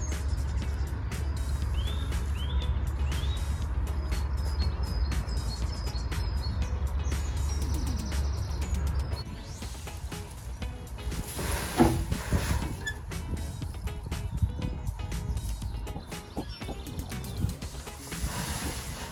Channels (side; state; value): both; identical; correlation 1.00